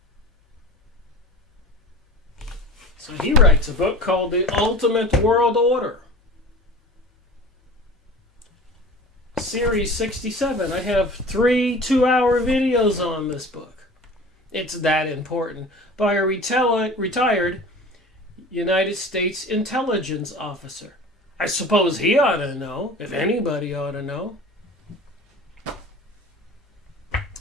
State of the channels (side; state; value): both; normal; correlation 0.39